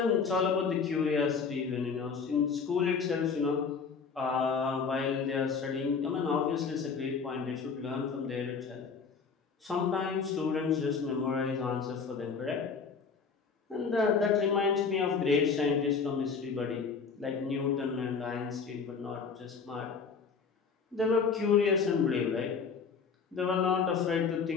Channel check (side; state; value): right; quieter; 5.5 dB